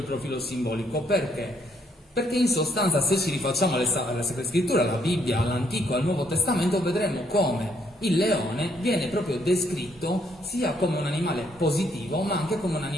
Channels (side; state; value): both; normal; correlation 0.71